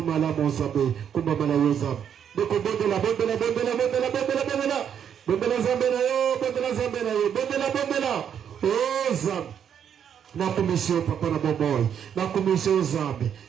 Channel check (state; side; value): quieter; left; 8.5 dB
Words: malamu Nzambe kumba mala yo Nzambe deko bondela Nzambe na yo bondela Nzambe na yo bondela oh Nzambe na commission papa na bomoy na commission Nzambe